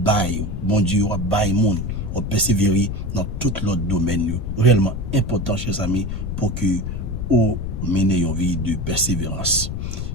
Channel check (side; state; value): left; noise; rumble, 4 dB below the sound